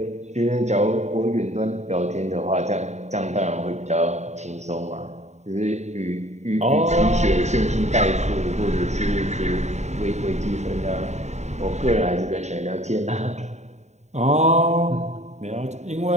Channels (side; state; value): left; late; 0.33 ms